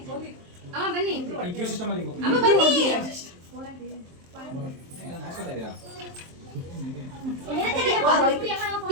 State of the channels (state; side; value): late; left; 23 ms